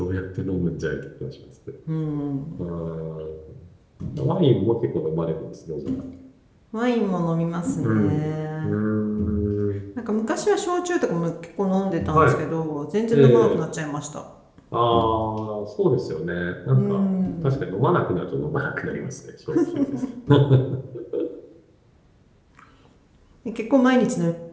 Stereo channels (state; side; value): identical; both; correlation 1.00